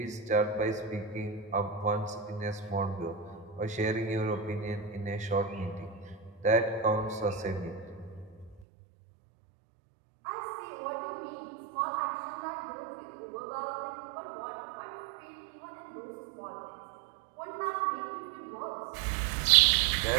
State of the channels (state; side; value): drops out; left; at 8.6 s